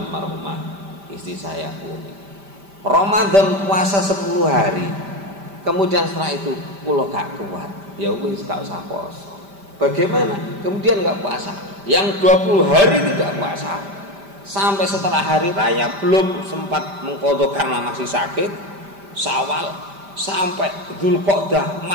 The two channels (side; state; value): left; late; 5.1 ms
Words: istri saya unik Ramadan puasa 10 hari, kemudian setelah itu pulau gak kuat, ya wis gak usah puasa. Bagaimana? Kemudian gak puasa, Yang 20 hari tidak puasa, sampai setelah hari raya belum sempat mengqadha karena masih sakit, Syawal sampai Dzulqa'dah